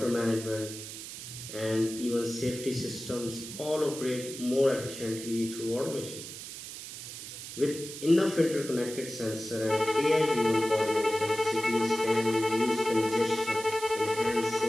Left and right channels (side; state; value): right; noise; hiss, 10 dB below the sound